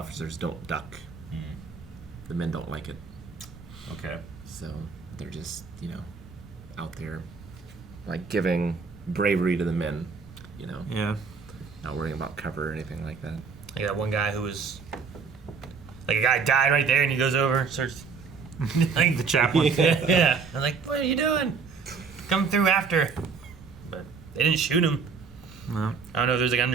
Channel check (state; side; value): quieter; left; 5.4 dB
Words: don't duck. The men don't like it. Okay. So they're just out there, like giving bravery to the men. Yeah. Not worrying about cover or anything like that. Like that one guy who was like a guy died right there, and he goes over, starts like the chaplain. Yeah. I'm like, what are you doing? Come through after. But they didn't shoot him. No. I don't know if there's like an